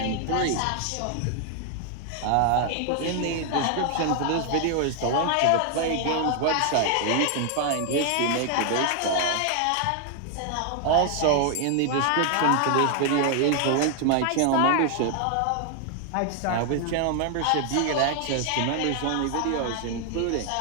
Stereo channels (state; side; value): different; both; correlation 0.00